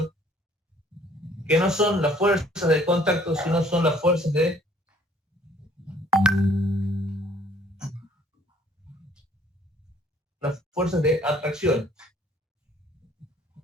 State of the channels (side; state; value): both; normal; correlation 0.59